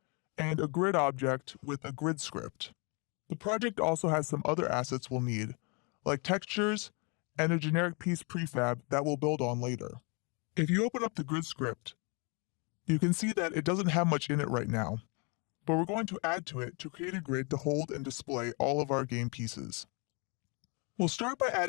and a grid object with a grid script. The project also has some other assets we'll need, like textures and a generic piece prefab that we'll build on later. If you open up the grid script, you can see that it doesn't have much in it right now, but we're going to add to it to create a grid to hold and display all of our game pieces. We'll start by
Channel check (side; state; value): right; quieter; 32.4 dB